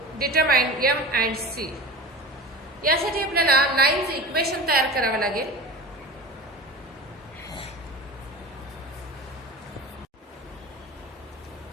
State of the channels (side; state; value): both; normal; correlation 0.32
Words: Determine m and c. यासाठी आपल्याला लाईनचे इक्वेशन तयार करावं लागेल.